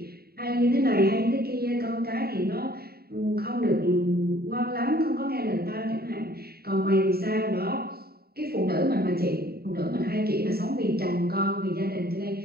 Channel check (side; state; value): left; late; 0.45 ms